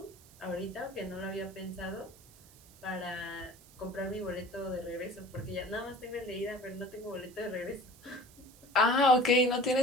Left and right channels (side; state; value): right; noise; hiss, 23 dB below the sound